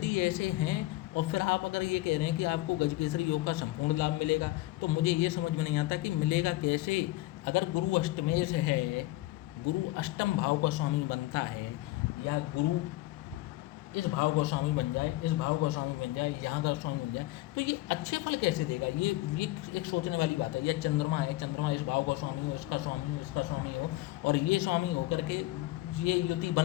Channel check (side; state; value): right; quieter; 17.8 dB